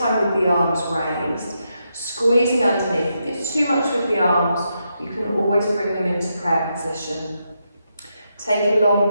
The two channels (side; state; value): both; inverted; correlation -0.83